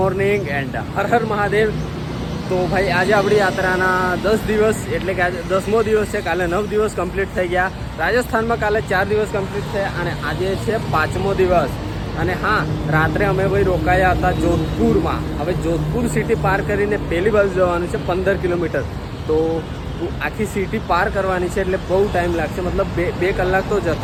and Har Har Mahadev. તો ભાઈ આજે આપણી યાત્રાના 10 દિવસ એટલે કે આજે 10મો દિવસ છે. કાલે 9 દિવસ કમ્પ્લીટ થઈ ગયા. રાજસ્થાનમાં કાલે 4 દિવસ કમ્પ્લીટ થયા અને આજે છે 5મો દિવસ. અને હા, રાત્રે અમે ભાઈ રોકાયા હતા જોધપુરમાં. હવે જોધપુર સિટી પાર કરીને પહેલી બાજુ જવાનું છે 15 કિલોમીટર. તો આખી સિટી પાર કરવાની છે એટલે બહુ ટાઈમ લાગશે. મતલબ બે કલાક તો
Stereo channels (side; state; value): both; identical; correlation 1.00